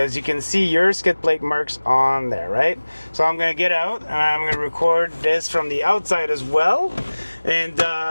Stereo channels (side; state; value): both; inverted; correlation -1.00